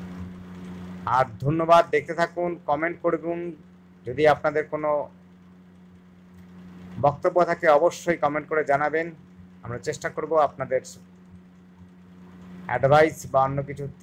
আর ধন্যবাদ, দেখতে থাকুন, কমেন্ট করুন। যদি আপনাদের কোনো বক্তব্য থাকে অবশ্যই কমেন্ট করে জানাবেন, আমরা চেষ্টা করব আপনাদের অ্যাডভাইস বা অন্য কিছু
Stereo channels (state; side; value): identical; both; correlation 1.00